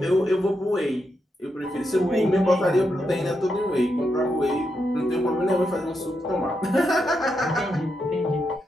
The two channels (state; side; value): normal; both; correlation 0.83